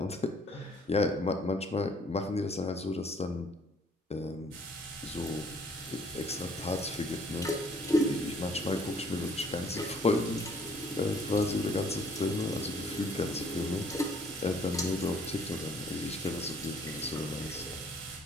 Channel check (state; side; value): normal; both; correlation 0.60